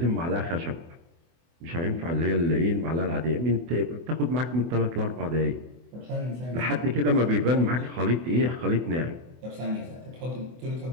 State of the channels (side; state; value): left; late; 24 ms